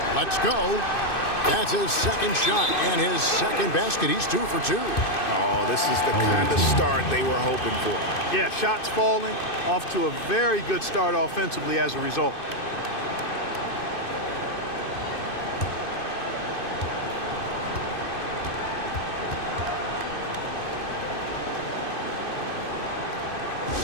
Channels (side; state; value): right; late; 2.6 ms